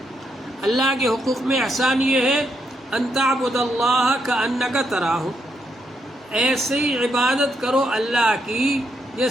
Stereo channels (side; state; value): both; normal; correlation 0.79